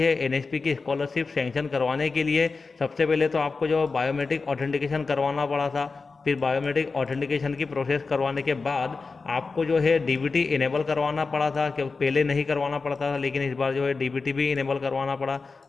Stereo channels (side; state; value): right; quieter; 4.3 dB